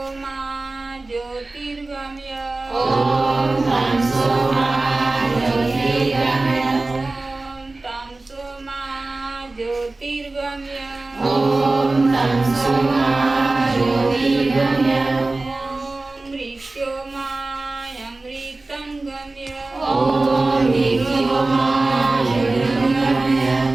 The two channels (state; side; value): quieter; left; 3.2 dB